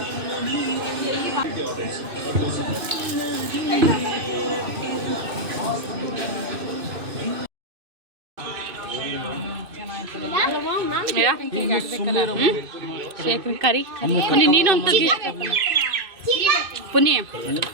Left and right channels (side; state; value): left; late; 2.6 ms